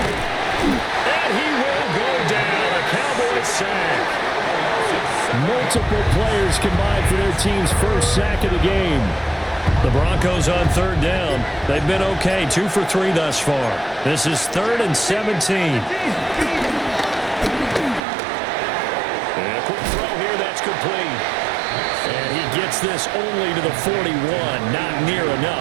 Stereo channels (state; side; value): drops out; left; at 18.0 s